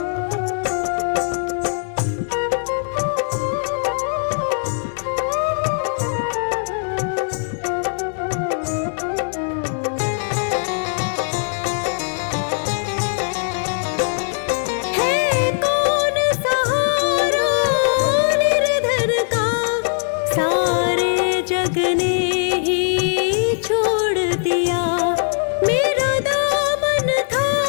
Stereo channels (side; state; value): right; silent; digital silence